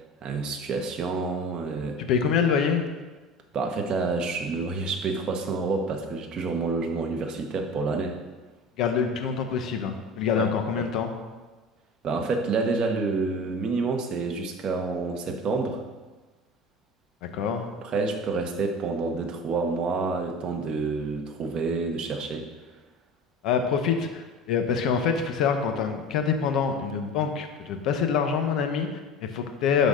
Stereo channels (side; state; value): both; normal; correlation 0.35